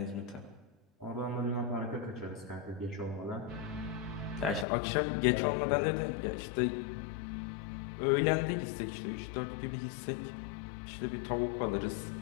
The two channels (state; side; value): drops out; right; at 4.7 s